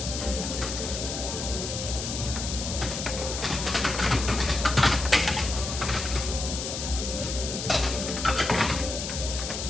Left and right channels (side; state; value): left; noise; hiss, 5 dB below the sound